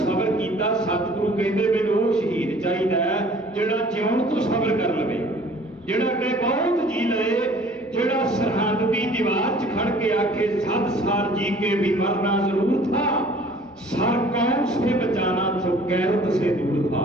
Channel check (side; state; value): both; normal; correlation 0.52